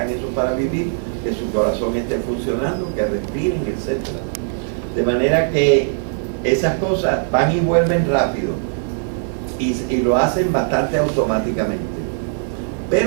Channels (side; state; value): left; silent; digital silence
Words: eso para vivir, que su corazón esté funcionando, que respiren, etc. De manera que esas cosas van y vuelven rápido y lo hacen bastante automáticamente.